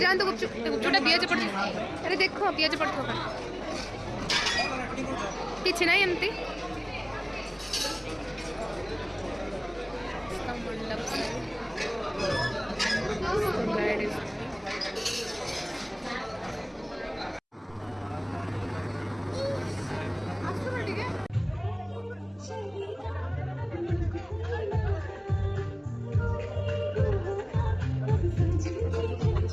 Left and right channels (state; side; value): identical; both; correlation 1.00